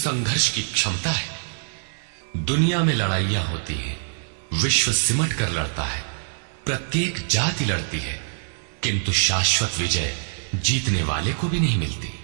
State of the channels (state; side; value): silent; left; digital silence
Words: की क्षमता है। दुनिया में लड़ाइयां होती हैं, विश्व सिमट कर लड़ता है, प्रत्येक जाति लड़ती है, किंतु शाश्वत विजय जीतने वाले को भी नहीं मिलती।